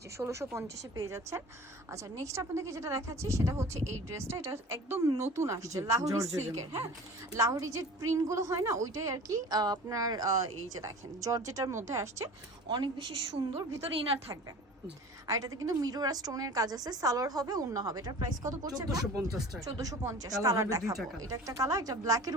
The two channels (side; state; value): both; normal; correlation 0.40